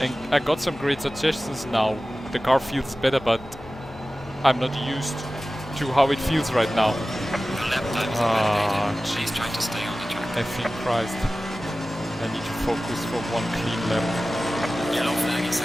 And I got some great suggestions now. The car feels better, but I'm not used to how it feels right now. The lap time is validated. She's trying to stay on the track. Effing Christ. I need to focus for one clean lap. Yellow flag in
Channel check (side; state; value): left; noise; hum, 20 dB below the sound